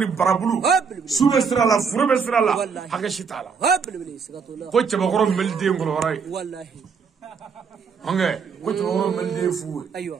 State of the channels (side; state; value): left; quieter; 5.9 dB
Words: barabulu sube sira la furbe sira la haga shitala Habli. Sigatullah. ko chaba goro melde ngolo horay Wallahi. ange ko chaba goro melde fu Aywa.